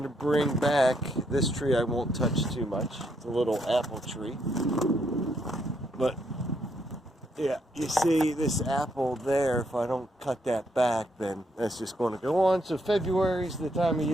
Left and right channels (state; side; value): normal; both; correlation 0.75